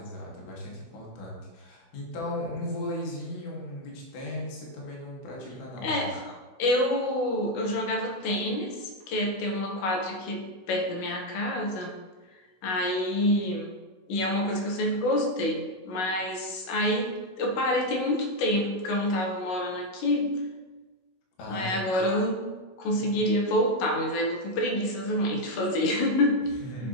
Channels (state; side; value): late; right; 16 ms